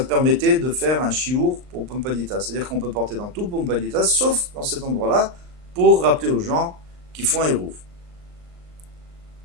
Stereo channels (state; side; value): late; left; 38 ms